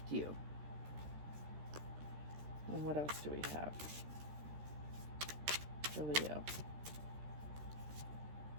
you. And what else do we have for Leo?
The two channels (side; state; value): left; late; 13 ms